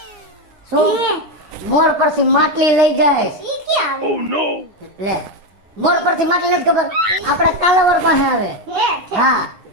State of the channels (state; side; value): late; left; 9.8 ms